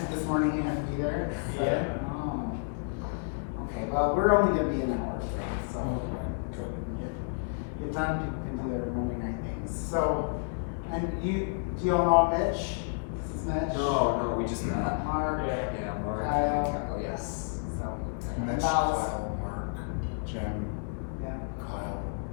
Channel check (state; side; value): silent; right; digital silence